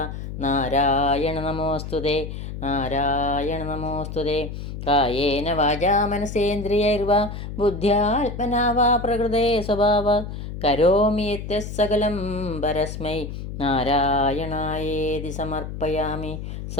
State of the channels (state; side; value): noise; left; hum, 8 dB below the sound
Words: നാരായണ നമോസ്തുതേ നാരായണ നമോസ്തുതേ. കായേന വാചാ മനസേന്ദ്രിയൈർവാ ബുദ്ധ്യാത്മനാ വാ പ്രകൃതേ സ്വഭാവാത് കരോമി യത്യത് സകലം പരസ്മൈ നാരായണായേതി സമർപ്പയാമി.